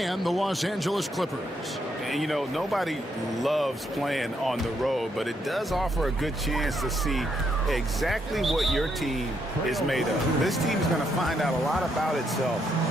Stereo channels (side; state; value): both; normal; correlation 0.76